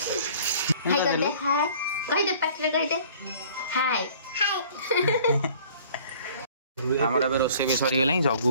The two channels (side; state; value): both; inverted; correlation -0.52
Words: हाय कर दे हाय कह दे पाटले कह दे हाय हमर अब रोसे भी सरी गेलै जगू